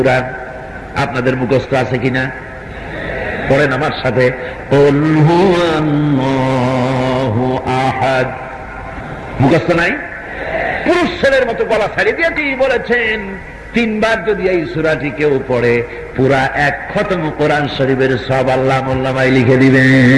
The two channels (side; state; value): both; identical; correlation 1.00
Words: আপনাদের মুখস্থ আছে কিনা? পড়েন আমার সাথে, কুল হুয়াল্লাহু আহাদ। মুখস্থ নাই? পুরুষ ছেলের মতো গলা ছাড়িয়ে দিয়ে কি বলেছেন, 3 বার যদি এই সূরাটি কেউ পড়ে, পুরা 1 খতম কোরআন শরীফের সওয়াব আল্লাহ মোল্লামায় লিখে